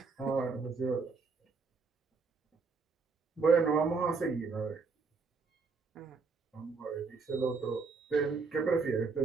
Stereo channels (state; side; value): quieter; left; 4.7 dB